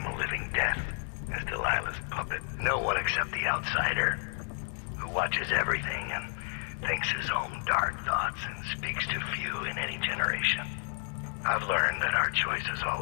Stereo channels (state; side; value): silent; right; 57 dB below the other